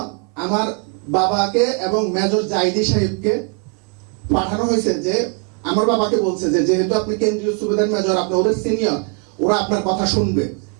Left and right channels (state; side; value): quieter; left; 37.0 dB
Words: আমার বাবাকে এবং মেজর জাইদি সাহেবকে পাঠানো হয়েছে, যে আমার বাবাকে বলছে যে যেহেতু আপনি কেন্দ্রীয় সুবেদার মেজর, আপনি ওদের সিনিয়র, ওরা আপনার কথা শুনবে।